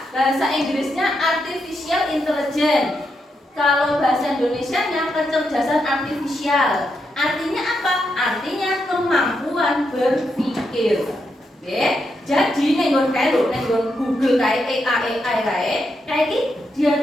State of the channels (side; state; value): both; normal; correlation 0.82